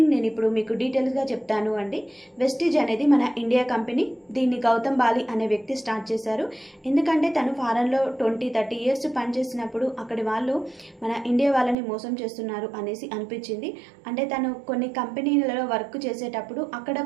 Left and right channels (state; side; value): drops out; left; at 11.8 s